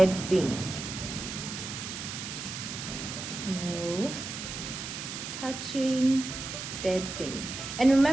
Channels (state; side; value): noise; right; hiss, 7 dB below the sound